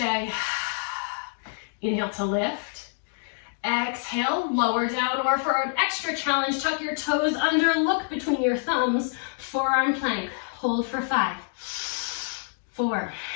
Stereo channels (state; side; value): silent; right; 60 dB below the other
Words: Inhale to lift. Exhale, lower down, or for an extra challenge, tuck your toes under, look between your thumbs, forearm plank. Hold for 5, 4,